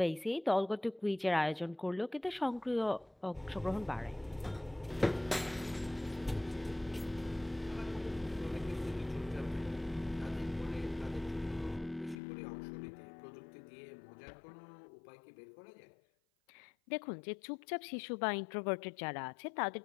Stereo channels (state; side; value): drops out; right; at 12.2 s